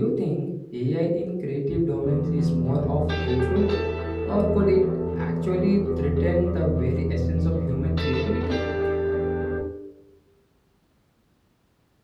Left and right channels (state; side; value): identical; both; correlation 1.00